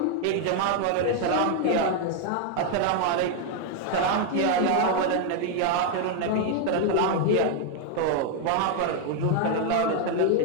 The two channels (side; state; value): both; different; correlation 0.00